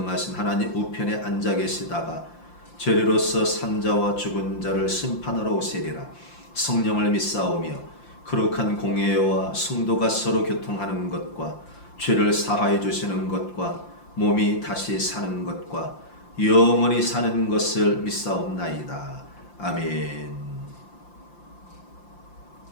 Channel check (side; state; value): right; late; 5.8 ms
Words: 하나님 우편에 앉아 계시다가 죄리로서 산 자와 죽은 자를 심판하러 오시리라. 성령을 믿사오며 거룩한 공예와 성도가 서로 교통하는 것과 죄를 사하여 주시는 것과 몸이 다시 사는 것과 영원히 사는 것을 믿사옵나이다. 아멘.